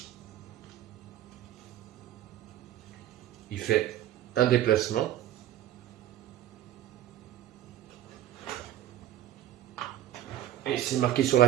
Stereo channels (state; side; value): quieter; left; 12.5 dB